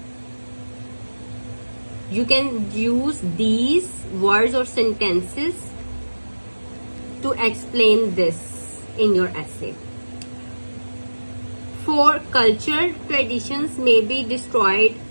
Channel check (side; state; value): both; inverted; correlation -1.00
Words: You can use these words or sentences to explain this in your essay. For cultural traditions may be destroyed,